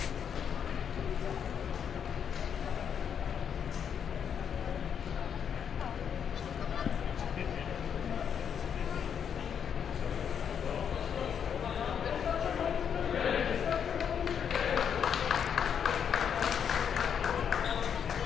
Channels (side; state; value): right; quieter; 7.8 dB